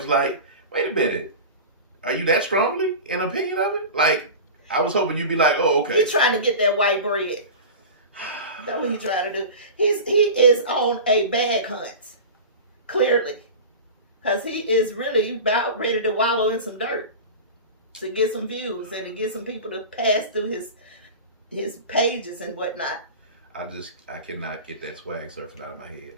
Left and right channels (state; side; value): inverted; both; correlation -0.32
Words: like, wait a minute. Are you that strongly in opinion of it? Like, I was hoping you'd be like, oh, okay. He's trying to get that white bread. That's what he's trying to do. He is on a bag hunt, clearly. Because he is really about ready to wallow in some dirt to get some views and to get some people to pass through his pages and whatnot. I cannot get that swag surfing out of my head.